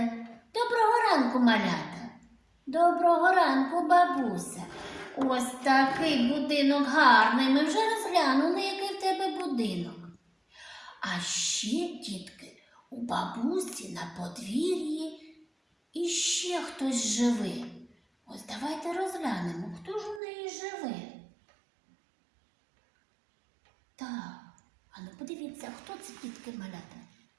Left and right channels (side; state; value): left; drops out; at 20.2 s